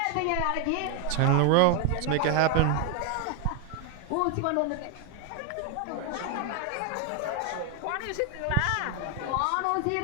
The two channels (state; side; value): different; both; correlation 0.00